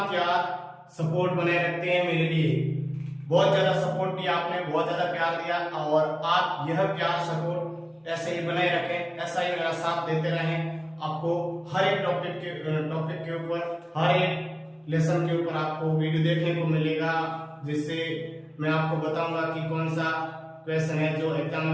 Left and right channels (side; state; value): both; identical; correlation 1.00